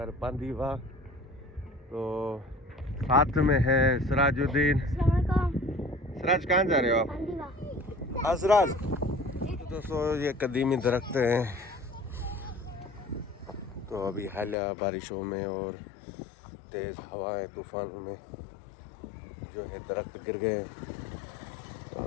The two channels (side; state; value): right; drops out; at 14.6 s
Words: बांदीवा। तो साथ में है सिराजुद्दीन। सिराज कहाँ जा रहे हो आप? हाँ सिराज। तो दोस्तों ये कदीमी दरख्त हैं। तो अभी हालिया बारिशों में और तेज़ हवाएं तूफानों में जो है दरख्त गिर गए